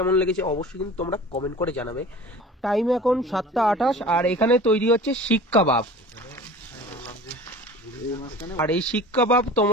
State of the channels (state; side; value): normal; both; correlation 0.41